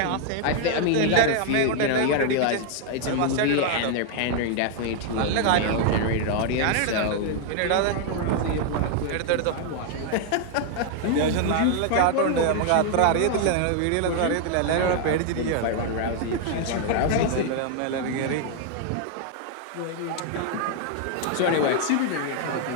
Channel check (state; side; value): different; both; correlation 0.00